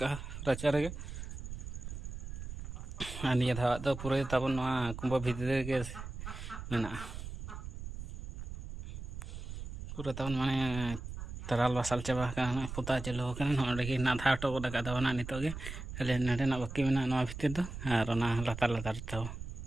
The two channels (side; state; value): right; noise; rumble, 8 dB below the sound